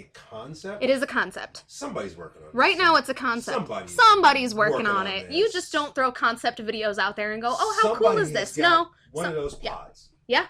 concept. It is a concept. Somebody's working on it. Right now it's a concept. Somebody's working on it. You just don't throw concept videos out there and go, oh, how cool is this? No. One of those pods. Yeah.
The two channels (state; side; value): identical; both; correlation 1.00